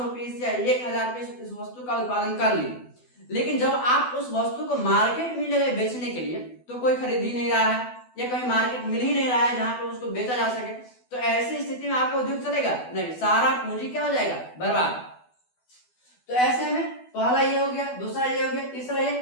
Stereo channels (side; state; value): right; late; 12 ms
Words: पीस या 1000 पीस इस वस्तु का उत्पादन कर लिए, लेकिन जब आप उस वस्तु को मार्केट में ले गए बेचने के लिए तो कोई खरीद ही नहीं रहा है या कहीं मार्केट मिल ही नहीं रहा है जहां पे उसको बेचा जा सके, तो ऐसी स्थिति में आपका उद्योग चलेगा? नहीं, सारा पूंजी क्या हो जाएगा? बर्बाद। तो ऐसे में पहला ये हो गया, दूसरा ये हो गया, तीसरा ये,